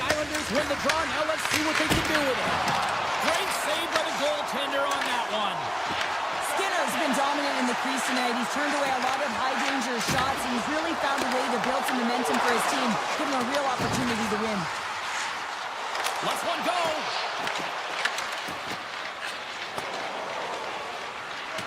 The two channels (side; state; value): both; identical; correlation 1.00